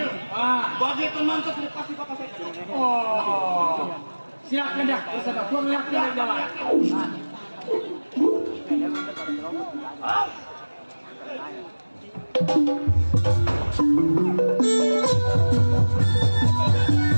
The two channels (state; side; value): inverted; both; correlation -1.00